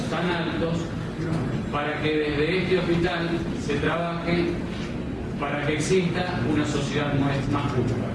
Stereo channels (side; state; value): both; identical; correlation 1.00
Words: altos para que desde este hospital se trabaje para que exista una sociedad más justa.